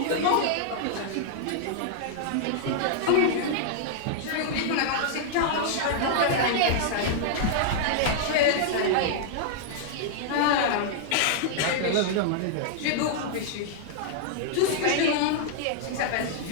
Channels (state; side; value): different; both; correlation -0.01